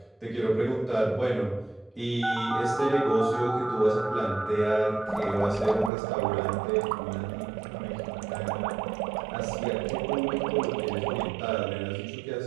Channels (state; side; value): drops out; left; at 5.9 s